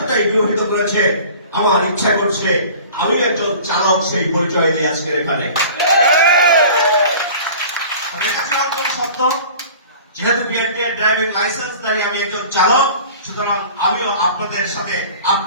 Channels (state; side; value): inverted; both; correlation -0.43